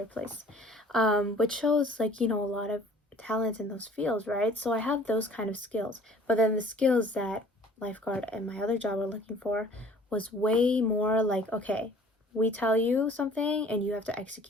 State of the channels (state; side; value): normal; both; correlation 0.52